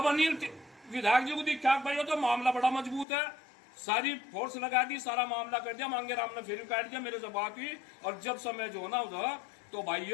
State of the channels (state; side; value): drops out; right; at 3.1 s